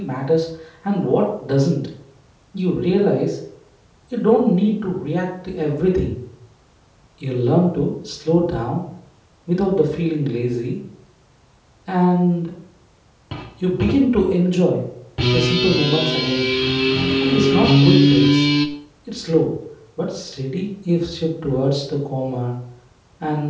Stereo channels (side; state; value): both; identical; correlation 1.00